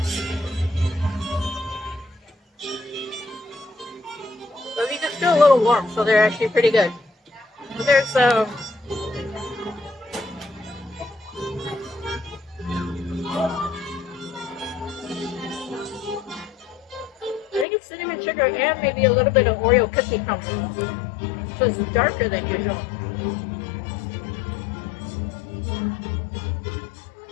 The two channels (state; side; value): drops out; right; at 17.7 s